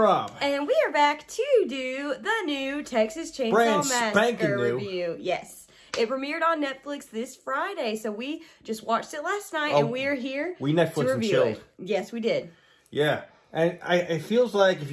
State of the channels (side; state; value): both; identical; correlation 1.00